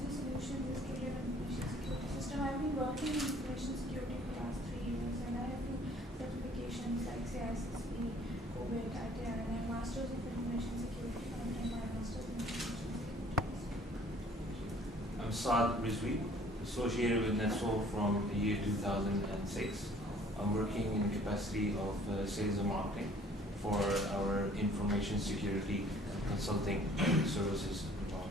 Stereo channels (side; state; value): both; normal; correlation 0.55